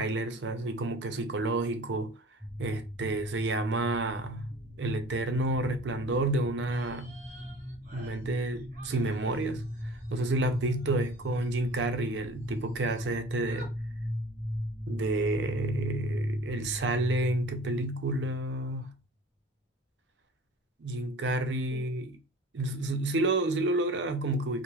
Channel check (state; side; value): normal; both; correlation 0.43